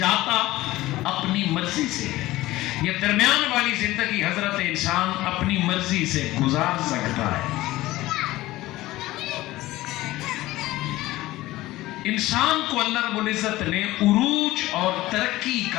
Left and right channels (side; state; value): right; quieter; 17.4 dB